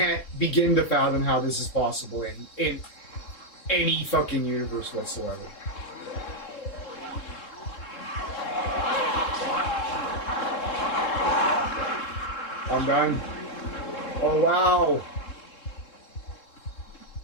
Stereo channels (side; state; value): right; late; 3.7 ms